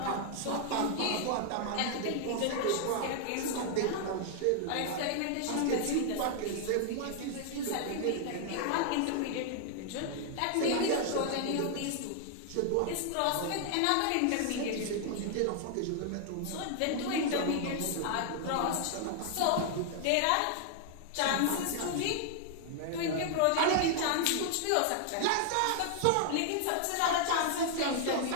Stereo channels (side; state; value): both; different; correlation 0.00